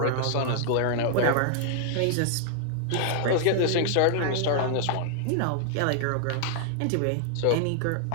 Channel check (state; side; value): different; both; correlation -0.01